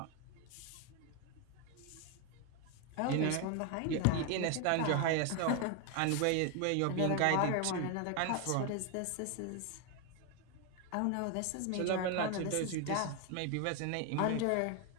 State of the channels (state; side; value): different; both; correlation 0.01